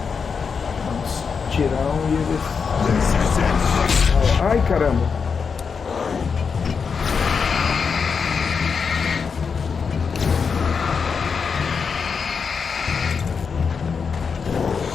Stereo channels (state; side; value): quieter; right; 5.8 dB